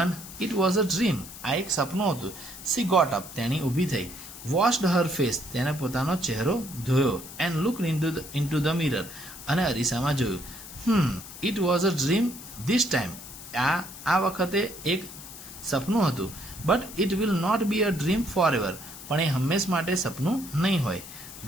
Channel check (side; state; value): left; noise; hiss, 14 dB below the sound